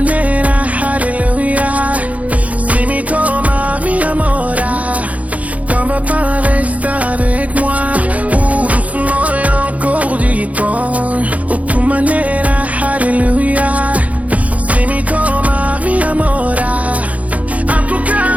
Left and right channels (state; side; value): late; left; 0.069 ms